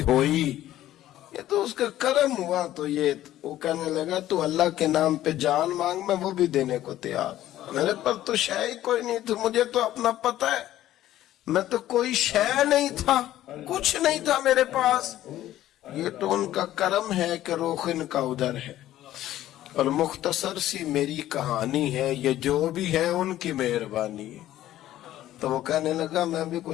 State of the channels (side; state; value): right; quieter; 13.6 dB